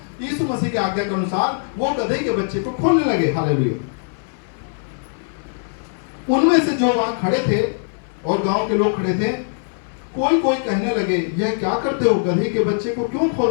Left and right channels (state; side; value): silent; right; 59 dB below the other